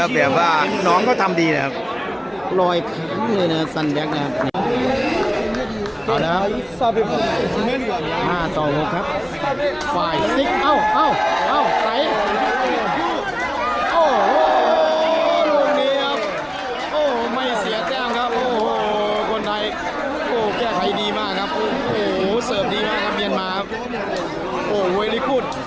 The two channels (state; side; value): identical; both; correlation 1.00